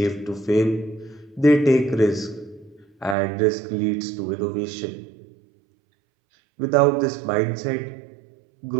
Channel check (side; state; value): left; drops out; at 3.2 s